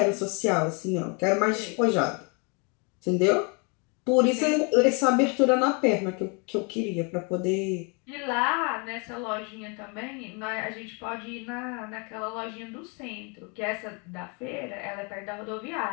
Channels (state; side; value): quieter; right; 33.7 dB